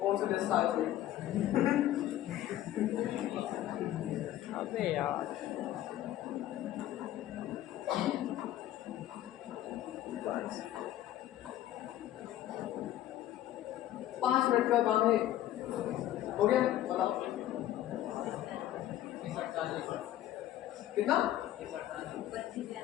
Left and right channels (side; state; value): right; quieter; 13.2 dB